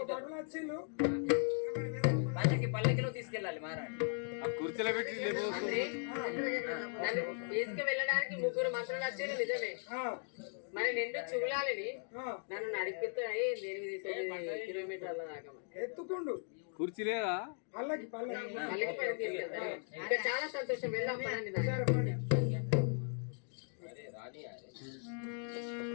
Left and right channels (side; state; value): right; silent; 52 dB below the other